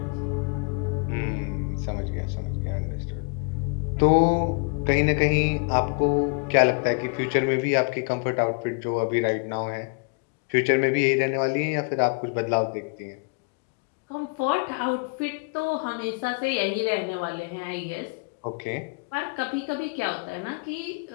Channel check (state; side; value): quieter; right; 33.9 dB